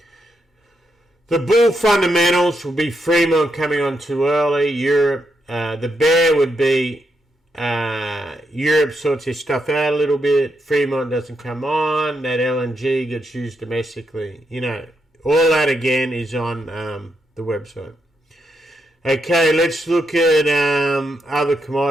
The bull fundamentals will be Fremont coming on too early, Europe. The bear would be Europe sorts their stuff out a little bit. Fremont doesn't come on. That LNG gets used domestically. You know, all that again is on the website. Okay, let's look at other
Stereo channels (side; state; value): both; normal; correlation 0.81